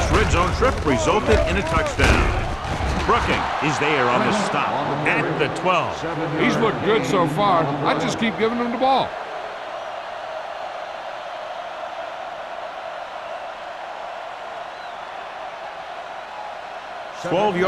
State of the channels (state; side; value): identical; both; correlation 1.00